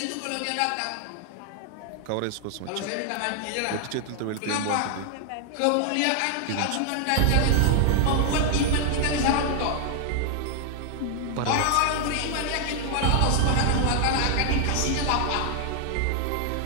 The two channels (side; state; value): both; different; correlation 0.00